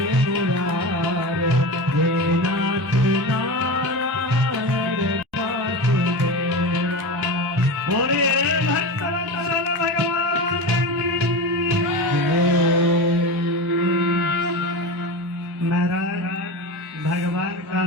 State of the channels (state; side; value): normal; both; correlation 0.25